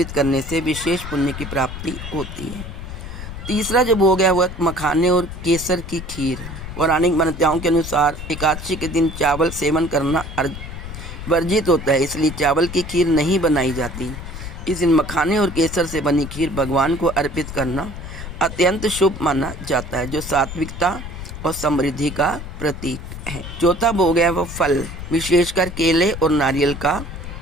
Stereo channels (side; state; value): left; noise; rumble, 10 dB below the sound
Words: करने से विशेष पुण्य की प्राप्ति होती है। तीसरा जो भोग है वह मखाने और केसर की खीर। पौराणिक मान्यताओं के अनुसार एकादशी के दिन चावल सेवन करना वर्जित होता है, इसलिए चावल की खीर नहीं बनाई जाती। इस दिन मखाने और केसर से बनी खीर भगवान को अर्पित करना अत्यंत शुभ माना जाता है, जो सात्विकता और समृद्धि का प्रतीक है। चौथा भोग है वह फल, विशेषकर केले और नारियल का